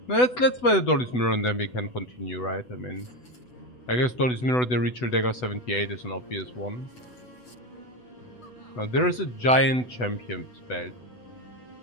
Let's buy the Dolly's mirror and then we can continue, right? I mean, I guess Dolly's mirror, the Ritual Dagger 78 is an obvious one. Now there is a giant champion spell.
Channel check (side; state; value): right; late; 8.0 ms